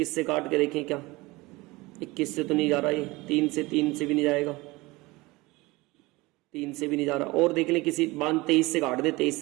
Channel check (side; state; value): left; quieter; 22.1 dB